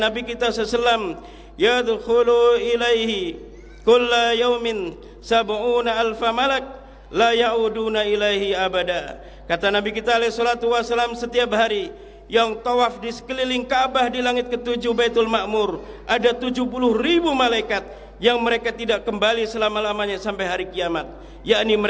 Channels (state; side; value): identical; both; correlation 1.00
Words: kita SAW, yadkhulu ilaihi kulla yaumin sab'una alfa malak la ya'uduna ilaihi abada. Kata Nabi kita SAW, setiap hari yang tawaf di sekeliling Ka'bah di langit ketujuh Baitul Ma'mur, ada 70.000 malaikat yang mereka tidak kembali selama-lamanya sampai hari kiamat, yakni